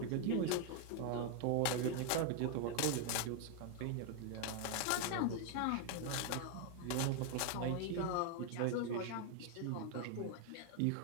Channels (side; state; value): both; different; correlation 0.01